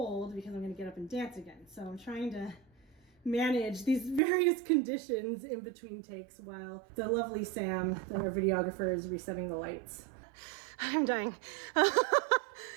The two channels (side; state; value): left; drops out; at 4.2 s